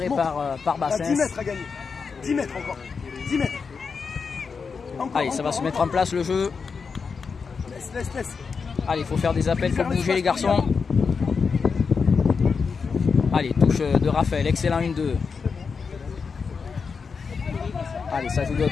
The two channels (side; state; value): right; quieter; 5.4 dB